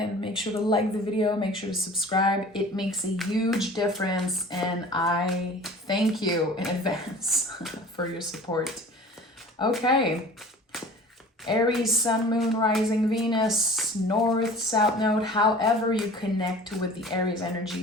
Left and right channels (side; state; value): both; normal; correlation 0.43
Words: Make sure to like the video, make sure to subscribe. It makes a huge difference and I thank you in advance for your support. Okay. Aries, Sun, Moon, Rising, Venus, North, South Node, however you connect with the Aries